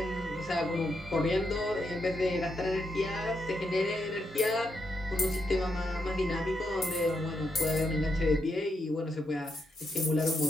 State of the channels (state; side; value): normal; both; correlation 0.81